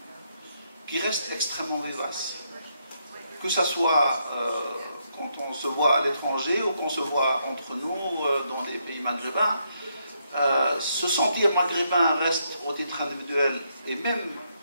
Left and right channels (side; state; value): both; inverted; correlation -0.77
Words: qui reste extrêmement vivace. Que ce soit quand on se voit à l'étranger ou qu'on se voit entre nous dans les pays maghrébins, se sentir maghrébin reste au titre individuel et même